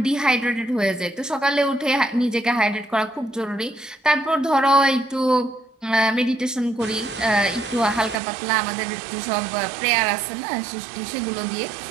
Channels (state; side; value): drops out; left; at 8.2 s